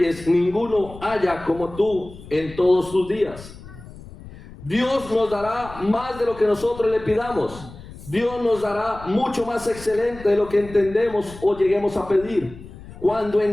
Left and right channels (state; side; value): noise; left; rumble, 17 dB below the sound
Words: ninguno haya como tú en todos tus días. Dios nos dará más de lo que nosotros le pidamos. Dios nos dará mucho más excelente de lo que entendemos o lleguemos a pedir. Cuando